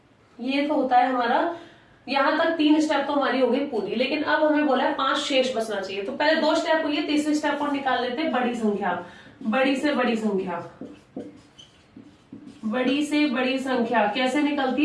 ये तो होता है हमारा, यहां तक 3 स्टेप तो हमारी हो गई पूरी, लेकिन अब हमें बोला है 5 शेष बचना चाहिए। तो पहले 2 स्टेप हुई है, तीसरे स्टेप को निकाल लेते हैं बड़ी संख्या। बड़ी से बड़ी संख्या, बड़ी से बड़ी संख्या कैसे निकलती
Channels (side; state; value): both; identical; correlation 1.00